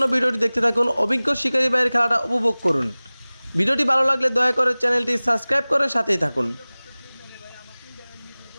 ভিডিওটি দেখতে থাকুন, অভিজ্ঞ শিকারী ভাইয়ের খেলাটা উপভোগ করুন। ভিডিওটি ভালো লাগলে দয়া করে চ্যানেলটি সাবস্ক্রাইব করে সাথেই থাকুন।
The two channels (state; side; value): inverted; both; correlation -0.99